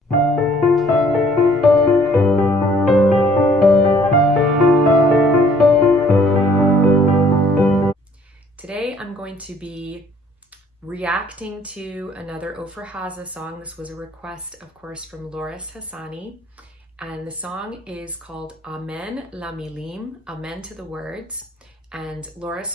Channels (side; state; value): both; normal; correlation 0.59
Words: Today, I'm going to be reacting to another Ofra Haza song. This was a request, of course, from Loris Hassani. And the song is called Amen la Milim, Amen to the words. And